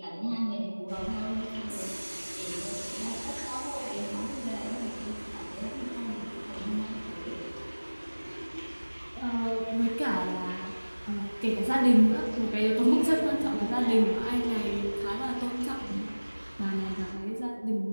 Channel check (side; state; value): both; inverted; correlation -1.00